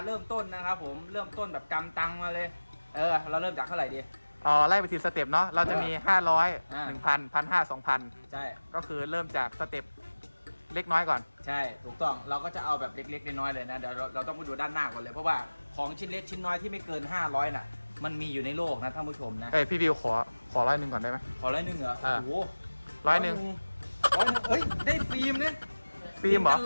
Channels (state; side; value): inverted; both; correlation -1.00